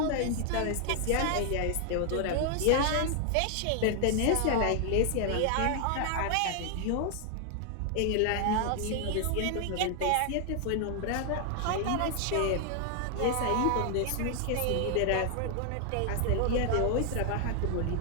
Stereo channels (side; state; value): both; different; correlation 0.00